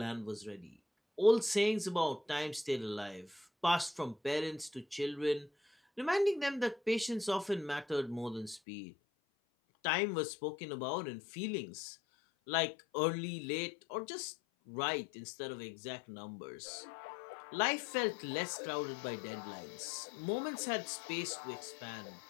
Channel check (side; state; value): right; drops out; at 8.6 s